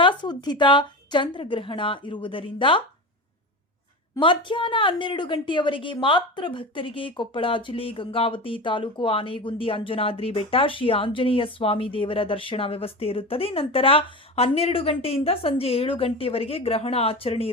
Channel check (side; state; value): both; normal; correlation 0.26